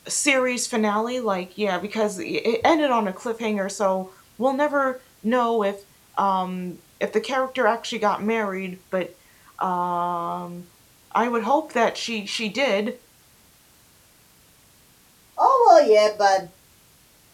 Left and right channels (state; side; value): identical; both; correlation 1.00